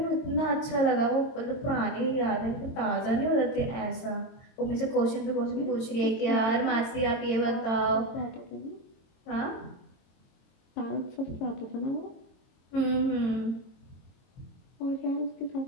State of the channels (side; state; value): right; late; 22 ms